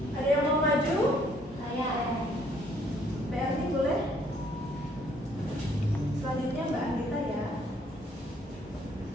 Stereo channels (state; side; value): normal; both; correlation 0.64